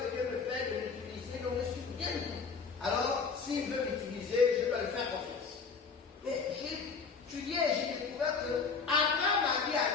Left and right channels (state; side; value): quieter; right; 5.2 dB